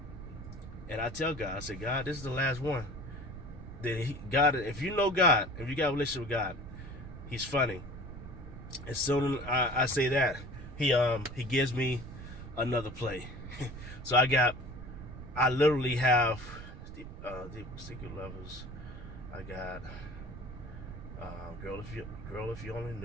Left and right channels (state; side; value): noise; right; rumble, 11 dB below the sound